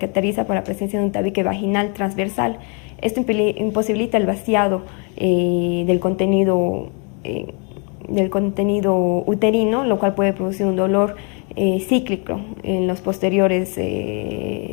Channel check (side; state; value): right; quieter; 35.8 dB